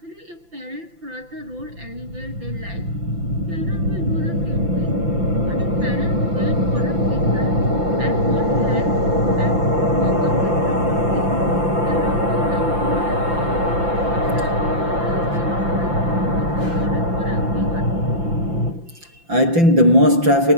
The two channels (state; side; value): late; left; 5.9 ms